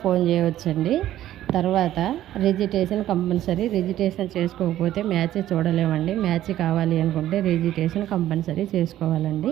ఫోన్ చేయవచ్చండి. తర్వాత రిజిస్ట్రేషన్ కంపల్సరీ. రిజిస్ట్రేషన్ చేసుకోకపోతే మ్యాచ్ చూడలేమండి. మ్యాచ్ కావాలి అనుకుంటే రిజిస్ట్రేషన్ కంపల్సరీ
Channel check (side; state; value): left; quieter; 13.0 dB